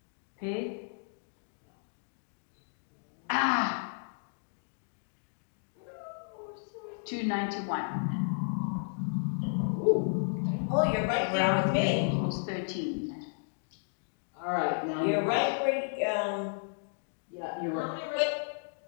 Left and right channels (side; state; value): right; silent; digital silence